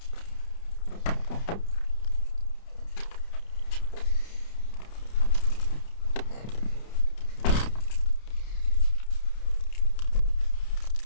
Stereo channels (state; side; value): late; right; 30 ms